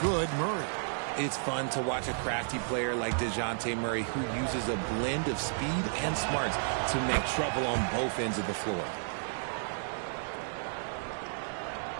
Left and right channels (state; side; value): silent; left; digital silence